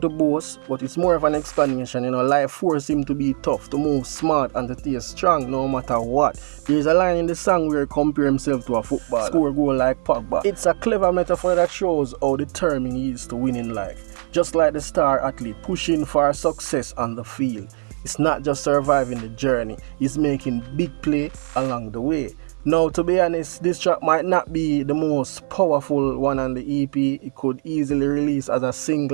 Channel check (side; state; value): left; silent; digital silence